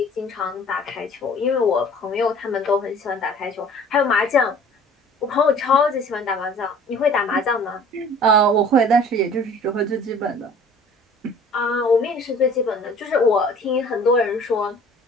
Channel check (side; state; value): both; normal; correlation 0.49